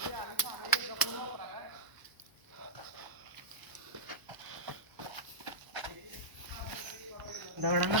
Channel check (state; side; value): late; left; 1.0 ms